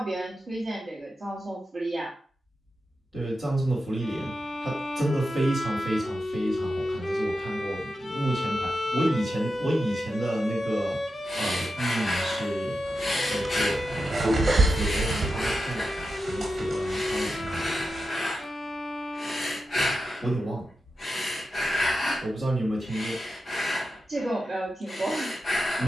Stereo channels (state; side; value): normal; both; correlation 0.90